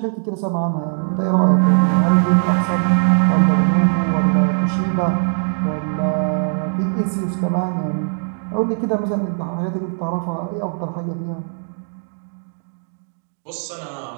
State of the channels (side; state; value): left; silent; digital silence